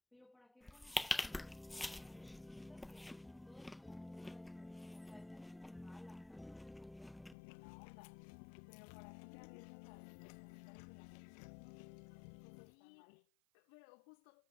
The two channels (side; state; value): right; drops out; at 7.4 s